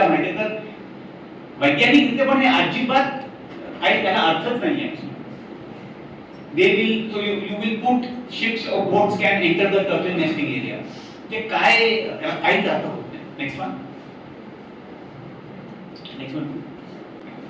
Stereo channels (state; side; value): identical; both; correlation 1.00